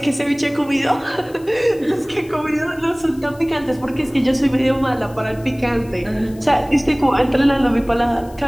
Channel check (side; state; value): left; noise; hiss, 25 dB below the sound